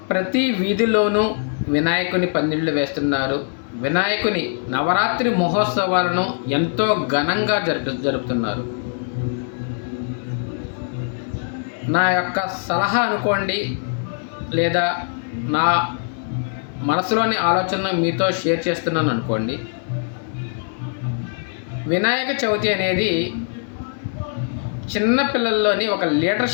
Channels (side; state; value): right; silent; digital silence